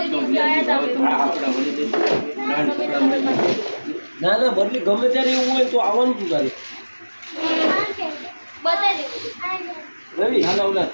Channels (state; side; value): inverted; both; correlation -1.00